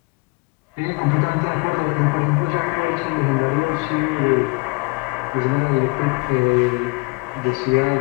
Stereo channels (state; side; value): quieter; right; 28.8 dB